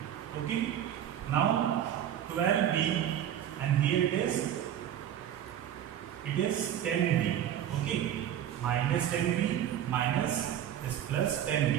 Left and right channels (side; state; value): left; quieter; 10.5 dB